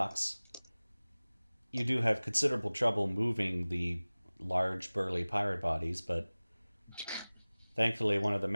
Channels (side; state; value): both; inverted; correlation -0.99